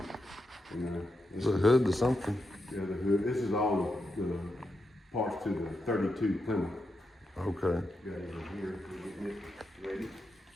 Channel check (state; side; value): normal; both; correlation 0.85